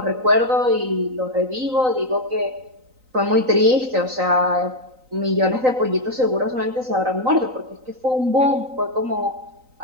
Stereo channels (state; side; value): late; left; 3.9 ms